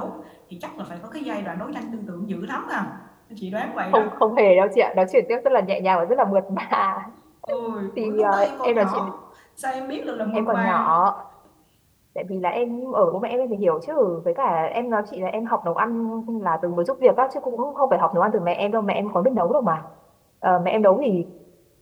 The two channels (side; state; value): both; identical; correlation 1.00